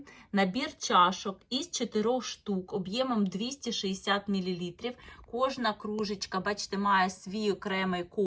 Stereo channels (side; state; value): both; identical; correlation 1.00